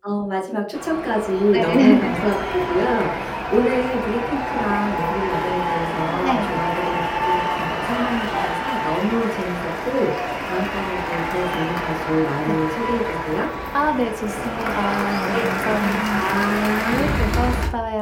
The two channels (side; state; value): both; identical; correlation 1.00